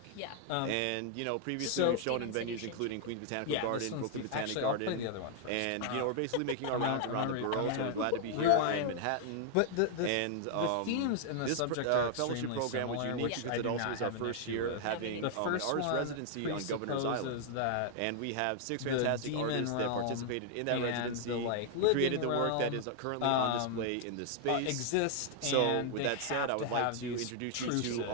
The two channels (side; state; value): both; different; correlation 0.00